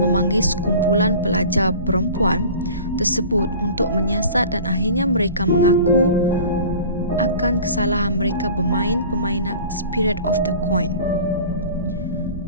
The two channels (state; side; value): inverted; both; correlation -0.41